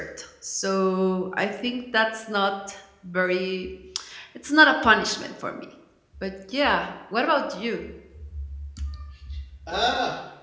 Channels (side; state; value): both; identical; correlation 1.00